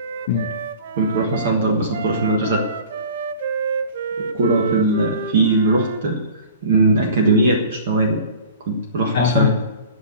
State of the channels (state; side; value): inverted; both; correlation -0.43